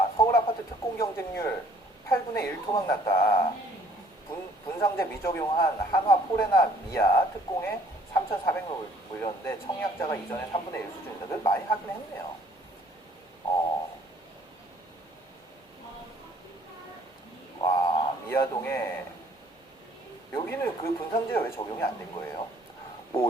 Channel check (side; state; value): both; normal; correlation 0.59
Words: 서울 아파트 특공 경쟁률 8분의 1 토막 났다. 분상제 미적용한 한화 포레나 미아 특공에 3,400명 물렸는데 청약자가 이전에 3분의 1 수준이다. 그래도 많이 하긴 했네요. 와, 미아동에 여기는 그 분상제가 왜 적용이 안 된 거예요?